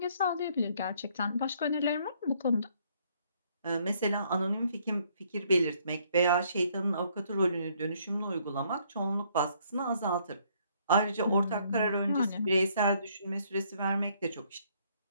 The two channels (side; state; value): both; inverted; correlation -0.67